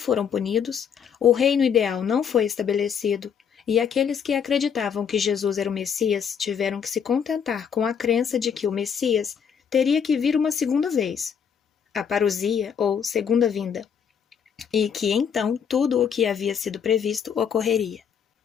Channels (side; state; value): right; quieter; 7.4 dB